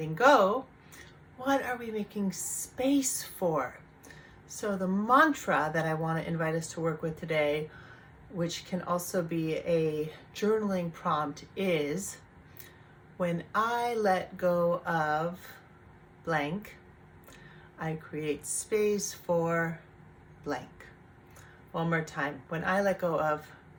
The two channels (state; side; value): identical; both; correlation 1.00